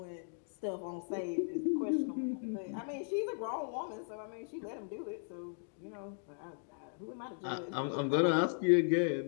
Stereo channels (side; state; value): right; silent; digital silence